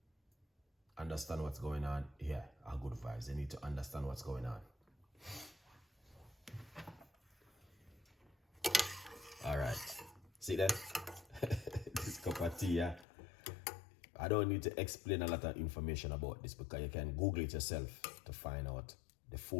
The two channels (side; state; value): right; drops out; at 13.1 s